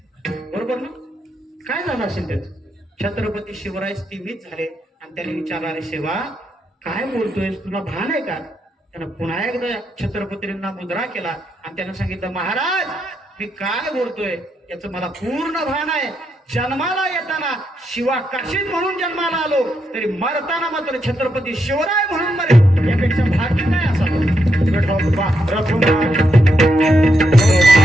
बरोबर ना? काय झालं असेल त्याच? छत्रपती शिवराय स्थिमित झाले आणि त्याने विचारलं, अरे शिवा काय बोलतोय, तुला भान आहे का? त्यानं पुन्हा एकदा छत्रपतींना मुद्रा केला आणि त्यानं सांगितलं, महाराज मी काय बोलतोय याचं मला पूर्ण भान आहे. जन्माला येताना शिवाकाशीत म्हणून जन्माला आलो, तरी मरताना मात्र छत्रपती शिवराय म्हणून मरे, यापेक्षा भाग्य नाही असावं.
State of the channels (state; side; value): normal; both; correlation 0.81